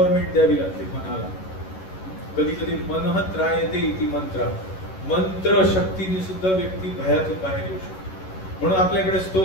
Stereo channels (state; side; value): late; right; 11 ms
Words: द्यावी लागते मनाला. कधी कधी मनः त्रायते इति मंत्र, मंत्र शक्तीने सुद्धा व्यक्ती भयातून बाहेर येऊ शकतो. म्हणून आपल्याकडे